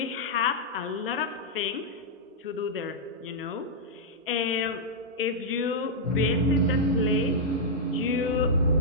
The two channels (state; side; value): normal; both; correlation -0.08